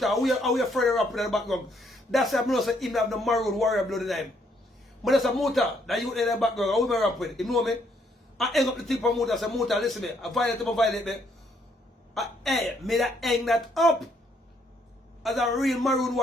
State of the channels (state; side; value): normal; both; correlation 0.70